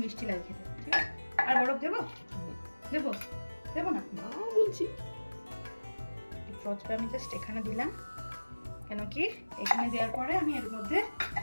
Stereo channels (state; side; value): inverted; both; correlation -1.00